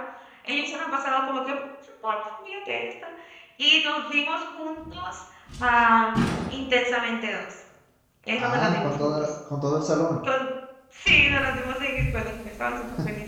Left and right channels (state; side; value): identical; both; correlation 1.00